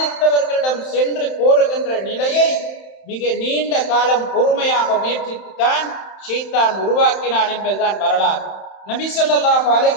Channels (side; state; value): right; late; 31 ms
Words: சென்று கோருகின்ற நிலையை மிக நீண்ட காலம் பொறுமையாக முயற்சித்துத்தான் ஷைத்தான் உருவாக்கினான் என்பதுதான் வரலாறு. நபி ஸல்லல்லாஹு